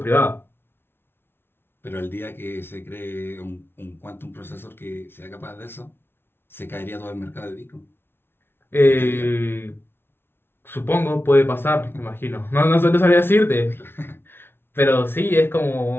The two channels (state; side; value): late; right; 0.11 ms